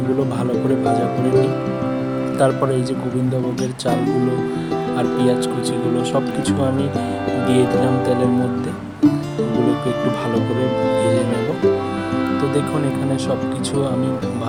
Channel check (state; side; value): identical; both; correlation 1.00